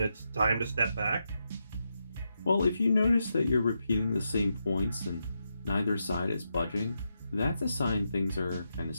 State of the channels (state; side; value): inverted; both; correlation -0.84